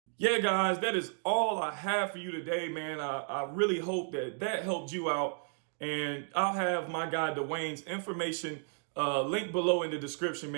Yeah, guys, that is all I have for you today, man. I really hope that helped you out. And I'll have my guy Dwayne's information linked below in the description,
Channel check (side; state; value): left; silent; 56 dB below the other